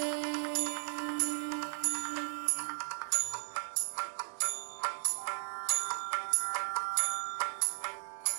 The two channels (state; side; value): silent; left; digital silence